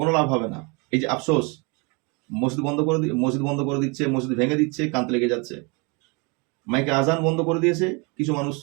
লাভ হবে না। এই যে আফসোস, মসজিদ বন্ধ করে দিচ্ছে, মসজিদ ভেঙে দিচ্ছে, কান্তে লেগে যাচ্ছে। মাইকে আজান বন্ধ করে দিয়েছে, কিছু মানুষ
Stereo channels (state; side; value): quieter; left; 30.3 dB